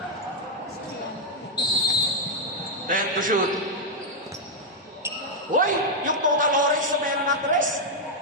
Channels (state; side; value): normal; both; correlation -0.02